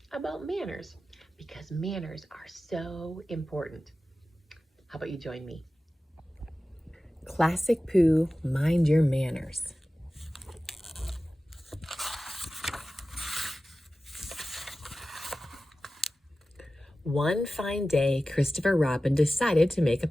about manners because manners are so important. How about you join me? Classic Pooh, mind your manners. One fine day, Christopher Robin decided to make a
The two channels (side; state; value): both; normal; correlation 0.95